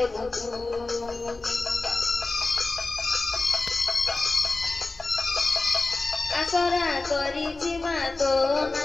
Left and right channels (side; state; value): right; quieter; 3.4 dB